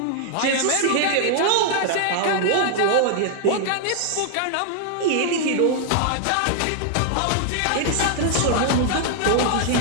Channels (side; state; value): both; different; correlation 0.00